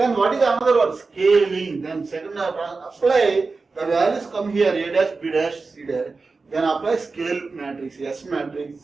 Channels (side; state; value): left; quieter; 4.1 dB